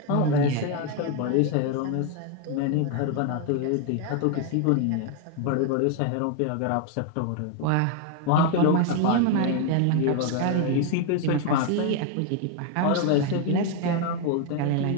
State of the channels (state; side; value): different; both; correlation 0.01